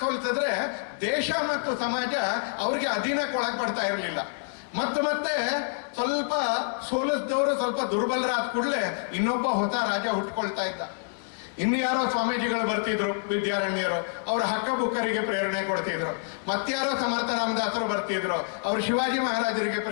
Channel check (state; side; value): silent; right; digital silence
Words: ಸೋಲಿಸಿದ್ರೆ ದೇಶ ಮತ್ತು ಸಮಾಜ ಅವ್ರಿಗೆ ಅಧೀನಕ್ಕೆ ಒಳಪಡ್ತಾ ಇರಲಿಲ್ಲ. ಮತ್ತೆ ಸ್ವಲ್ಪ ಸೋಲಿಸಿದವರು ಸ್ವಲ್ಪ ದುರ್ಬಲರಾದ ಕೂಡಲೇ ಇನ್ನೊಬ್ಬ ಹೊಸ ರಾಜ ಹುಟ್ಕೊಳ್ತಾ ಇದ್ದ. ಇನ್ಯಾರೋ ಸ್ವಾಮೀಜಿಗಳು ಬರ್ತಿದ್ರು, ವಿದ್ಯಾರಣ್ಯರು, ಅವರ ಹಕ್ಕ ಬುಕ್ಕರಿಗೆ ಪ್ರೇರಣೆ ಕೊಡ್ತಿದ್ರು. ಮತ್ಯಾರೋ ಸಮರ್ಥ ರಾಮದಾಸರು ಬರ್ತಿದ್ರು, ಅವರು ಶಿವಾಜಿ ಮಹಾರಾಜರಿಗೆ